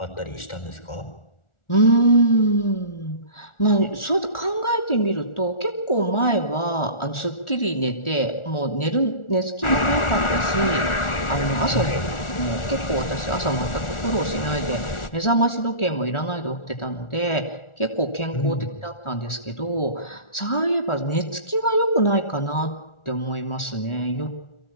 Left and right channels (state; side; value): late; right; 1.4 ms